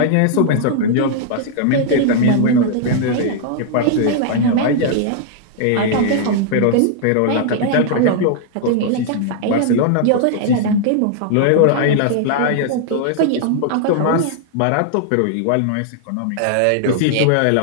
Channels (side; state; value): both; different; correlation 0.00